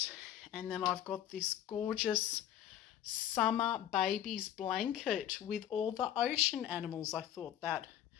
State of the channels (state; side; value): quieter; right; 11.1 dB